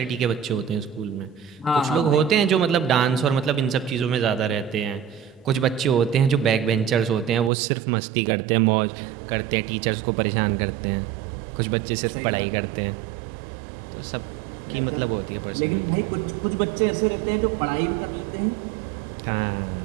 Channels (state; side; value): drops out; left; at 7.5 s